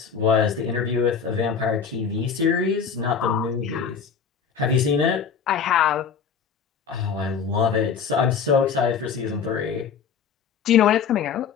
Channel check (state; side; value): quieter; right; 6.6 dB